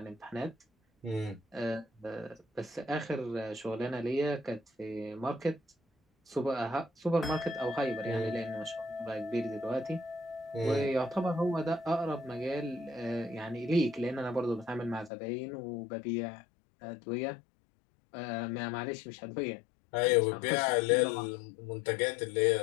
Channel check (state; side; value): drops out; right; at 15.1 s